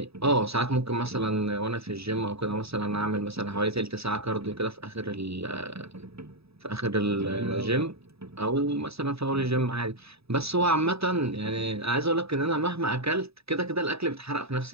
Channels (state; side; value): late; left; 0.78 ms